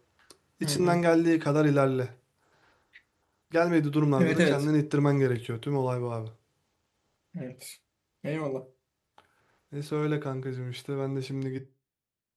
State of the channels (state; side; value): identical; both; correlation 1.00